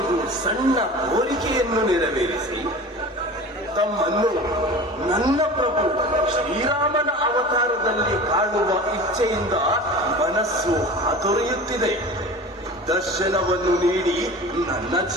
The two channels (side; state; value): both; normal; correlation 0.36